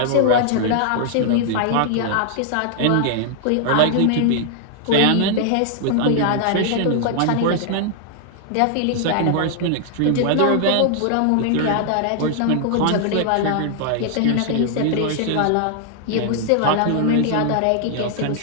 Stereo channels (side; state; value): both; different; correlation 0.00